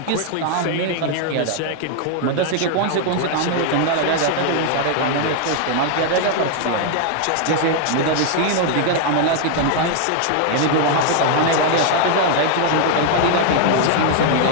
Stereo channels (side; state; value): both; different; correlation 0.00